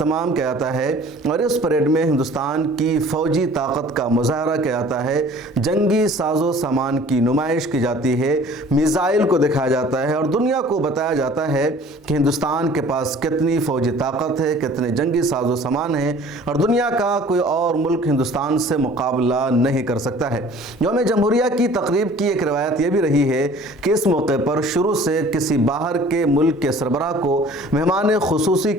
किया जाता है और इस परेड में हिंदुस्तान की फ़ौजी ताकत का मुज़ाहरा किया जाता है, जंगी साजो सामान की नुमाइश की जाती है, मिसाइल को दिखाया जाता है और दुनिया को बताया जाता है कि हिंदुस्तान के पास कितनी फ़ौजी ताकत है, कितने जंगी साजो सामान है और दुनिया का कोई और मुल्क हिंदुस्तान से मुकाबला नहीं कर सकता है। यौम जमहूरिया की तकरीब की एक रवायत यह भी रही है कि इस मौके पर शुरू से किसी बाहर के मुल्क के सरबराह को मेहमान खुसूसी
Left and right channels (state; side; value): normal; both; correlation 0.49